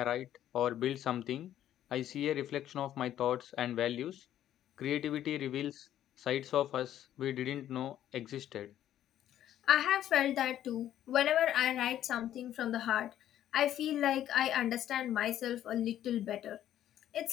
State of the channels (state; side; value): quieter; right; 11.7 dB